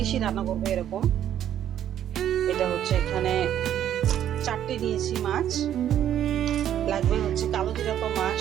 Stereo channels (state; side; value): quieter; left; 10.6 dB